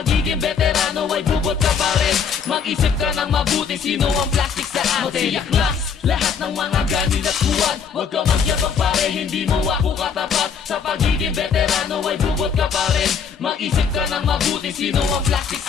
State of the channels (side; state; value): right; quieter; 6.6 dB